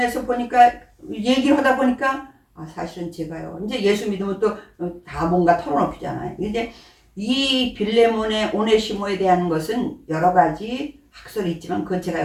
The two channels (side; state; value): both; identical; correlation 1.00